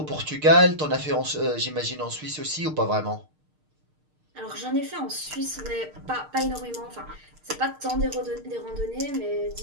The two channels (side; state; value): left; late; 6.5 ms